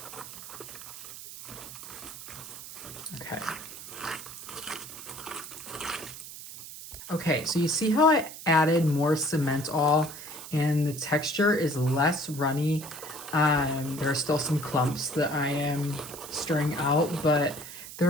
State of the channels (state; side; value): noise; right; hiss, 12 dB below the sound